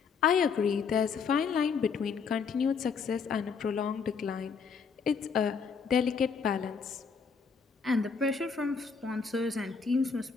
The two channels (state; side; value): quieter; right; 5.7 dB